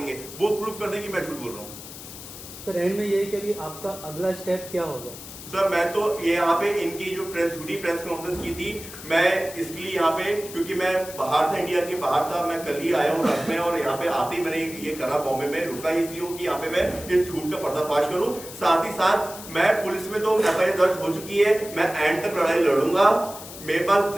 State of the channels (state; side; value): noise; left; hiss, 13 dB below the sound